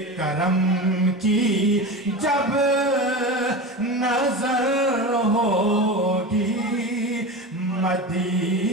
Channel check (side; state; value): both; normal; correlation 0.26